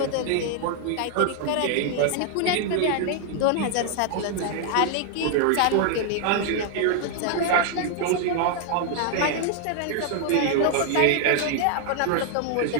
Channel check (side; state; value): both; different; correlation 0.00